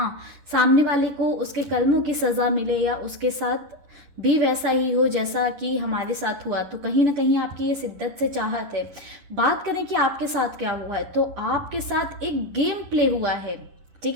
सामने वाले को उसके कर्मों की सज़ा मिले या उसके साथ भी वैसा ही हो जैसा कि हमारे साथ हुआ। तो कहीं ना कहीं आपकी ये शिद्दत से चाहत है। बात करें कि आपके साथ क्या हुआ है, तो आपके साथ एक गेम प्ले हुआ है। ठीक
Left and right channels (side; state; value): left; late; 11 ms